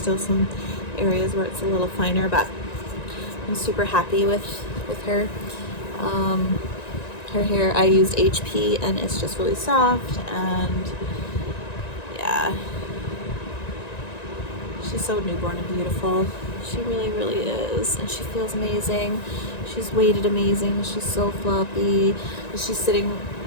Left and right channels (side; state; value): right; late; 1.9 ms